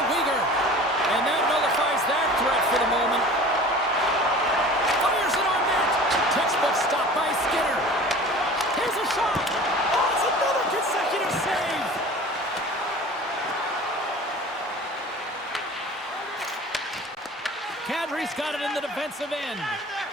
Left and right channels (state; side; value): normal; both; correlation 0.41